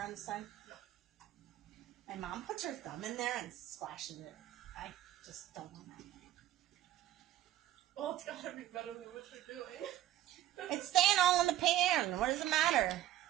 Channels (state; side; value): quieter; left; 13.4 dB